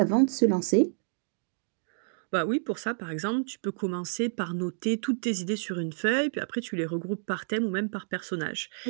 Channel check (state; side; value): silent; left; digital silence